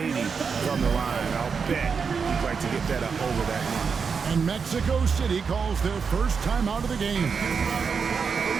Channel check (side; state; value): left; quieter; 5.7 dB